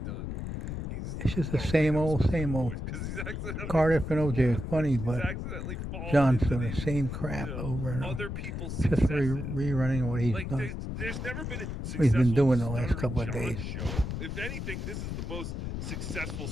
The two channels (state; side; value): noise; left; rumble, 5 dB below the sound